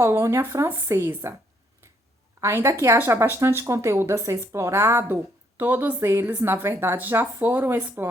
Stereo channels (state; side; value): normal; both; correlation 0.70